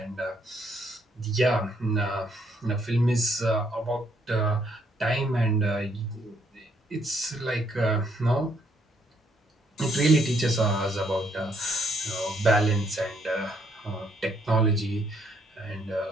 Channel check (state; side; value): normal; both; correlation 0.71